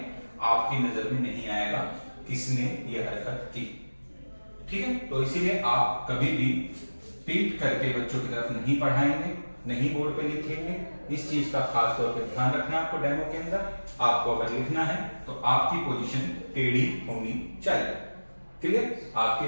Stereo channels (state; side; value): inverted; both; correlation -1.00